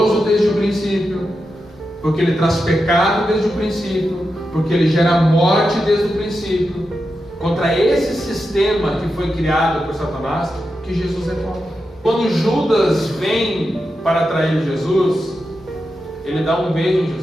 desde o princípio, porque ele traz pecado desde o princípio, porque ele gera morte desde o princípio. Contra esse sistema que foi criado por Satanás, que Jesus é contra. Quando Judas vem para atrair Jesus, ele dá um beijo em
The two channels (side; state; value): both; normal; correlation 0.89